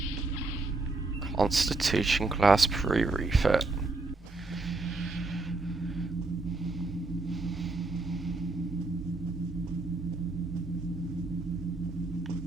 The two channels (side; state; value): left; quieter; 3.3 dB